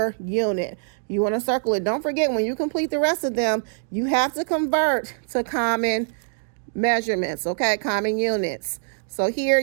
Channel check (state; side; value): silent; left; digital silence